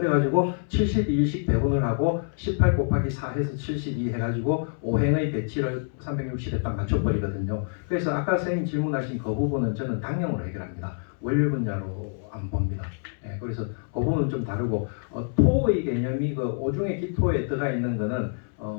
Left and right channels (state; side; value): silent; right; 61 dB below the other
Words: 72일씩 배분을 하고 18 곱하기 4 해서 72 해가지고 5행의 배치를 360에 딱 맞춰버리거든요. 그래서 아까 선생님 질문하신 그 부분은 저는 당형으로 해결합니다. 월요일 분야로 안 봅니다. 예, 그래서 그 부분은 좀 다르고 토의 개념이 그 오중의 기토에 들어가 있는 거는